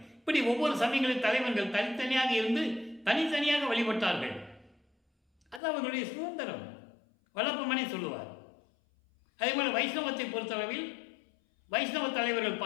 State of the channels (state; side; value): drops out; right; at 5.6 s